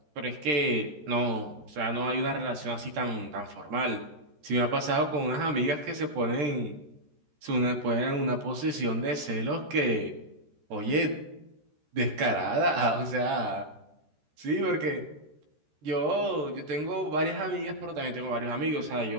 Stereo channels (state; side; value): late; left; 13 ms